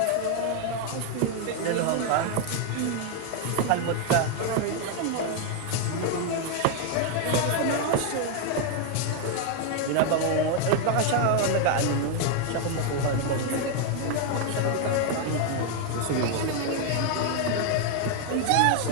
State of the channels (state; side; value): different; both; correlation 0.01